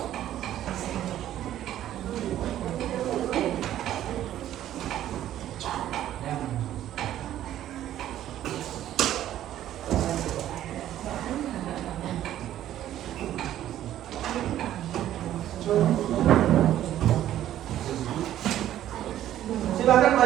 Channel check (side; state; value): left; quieter; 12.3 dB